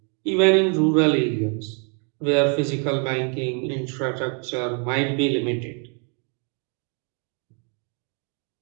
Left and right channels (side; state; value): left; quieter; 38.5 dB